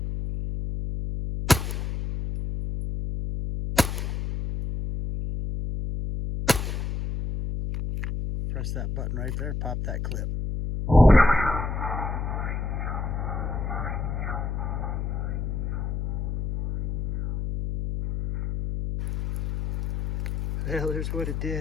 Press that button right there, pop that clip. Well, there's what it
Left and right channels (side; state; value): left; noise; hum, 2 dB below the sound